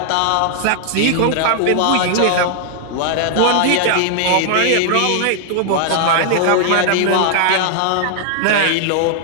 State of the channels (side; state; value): both; different; correlation 0.00